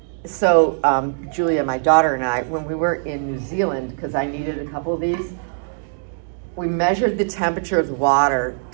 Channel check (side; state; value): left; silent; digital silence